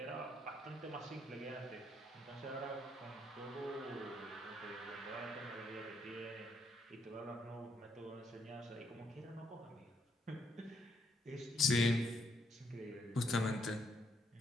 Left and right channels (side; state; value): both; normal; correlation 0.74